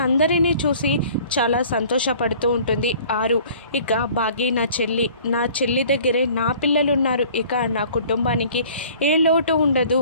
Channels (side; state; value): both; inverted; correlation -0.50